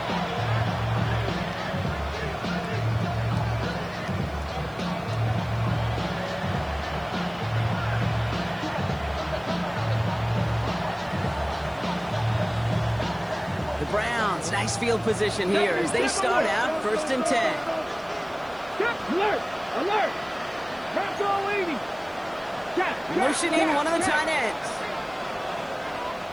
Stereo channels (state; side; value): noise; right; hiss, 28 dB below the sound